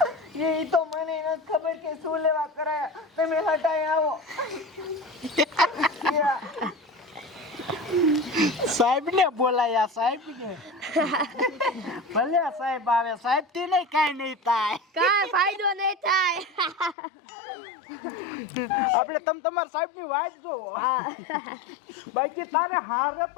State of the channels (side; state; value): right; drops out; at 16.9 s